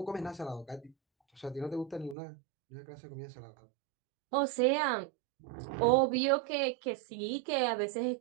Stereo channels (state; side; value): drops out; left; at 2.1 s